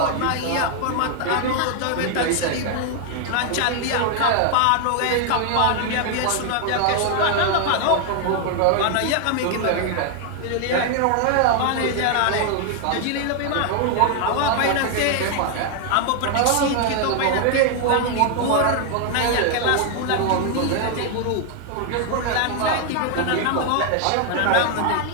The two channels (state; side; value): different; both; correlation 0.00